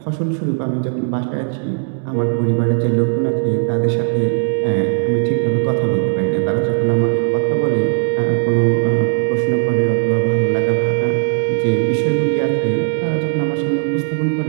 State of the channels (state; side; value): silent; left; digital silence